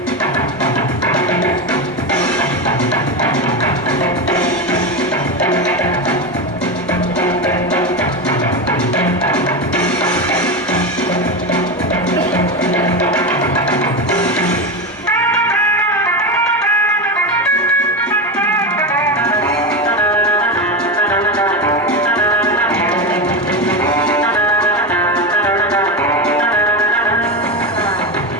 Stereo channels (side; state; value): both; normal; correlation 0.17